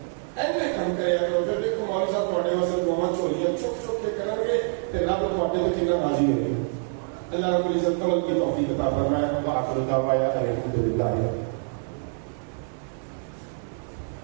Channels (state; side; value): silent; left; 61 dB below the other